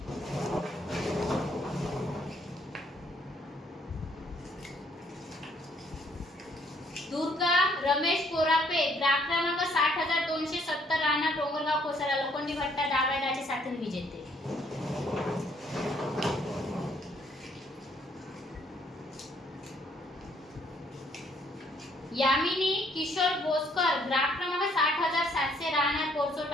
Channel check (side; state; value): both; normal; correlation 0.66